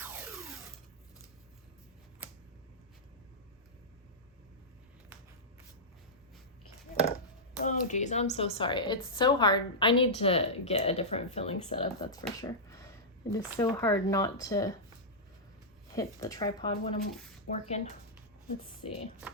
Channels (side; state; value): both; normal; correlation -0.12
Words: Okay. Oh geez, I'm so sorry. It's so hard. I need to get a different filling setup, that's for sure. It is so hard not to hit the tripod when I'm working. Let's see,